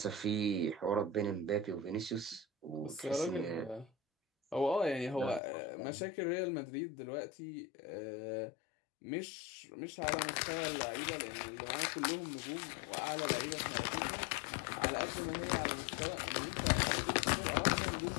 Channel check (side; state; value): right; drops out; at 5.4 s